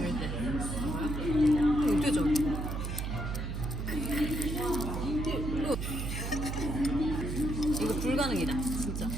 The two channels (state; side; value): noise; right; hum, 3 dB below the sound